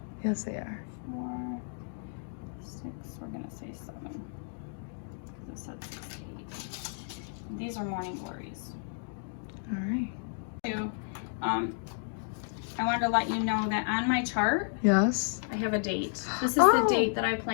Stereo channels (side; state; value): right; silent; digital silence